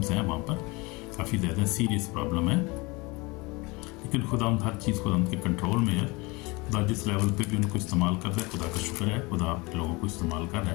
हैं वहाँ पर, काफ़ी ज़्यादा सीरियस प्रॉब्लम है। लेकिन खुदा हर चीज़ खुदा के कंट्रोल में है। खुदा जिस लेवल पे भी उनको इस्तेमाल कर रहा है, खुदा का शुक्र है, खुदा लोगों को इस्तेमाल कर रहा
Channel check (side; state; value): right; quieter; 25.4 dB